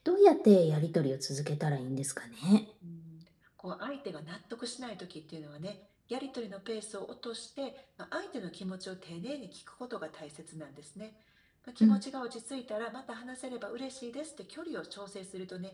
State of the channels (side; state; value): both; identical; correlation 1.00